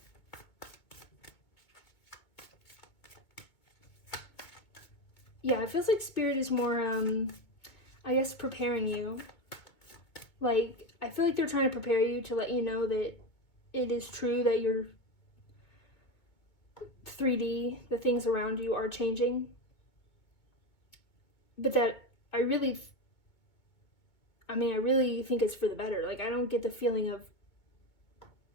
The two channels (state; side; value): late; right; 2.2 ms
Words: Yeah, it feels like Spirit is more, I guess, preparing you Like, I feel like they're trying to prepare you to let you know that it is true that your 3D, the things around you, are changing. But that I really think it's for the better. Like, I don't get the feeling of,